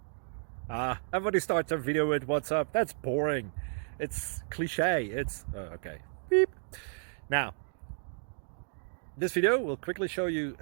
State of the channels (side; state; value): left; silent; digital silence